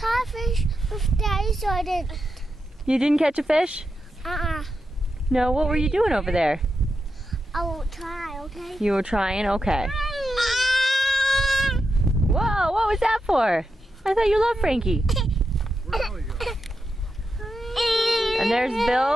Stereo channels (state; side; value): normal; both; correlation 0.87